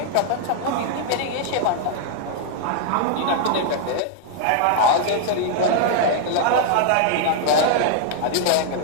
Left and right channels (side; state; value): both; different; correlation -0.01